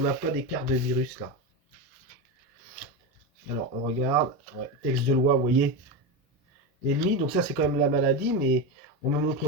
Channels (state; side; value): normal; both; correlation 0.17